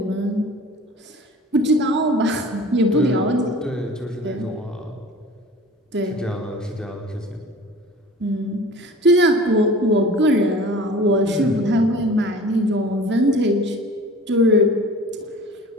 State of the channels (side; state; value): both; normal; correlation 0.42